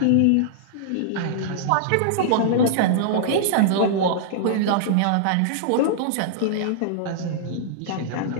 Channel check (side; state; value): both; different; correlation -0.02